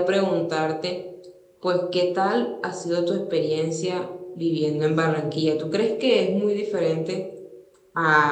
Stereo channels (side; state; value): both; identical; correlation 1.00